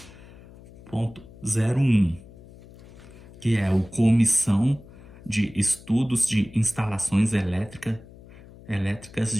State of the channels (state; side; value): noise; left; hum, 20 dB below the sound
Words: que é o Comissão de Estudos de Instalações Elétricas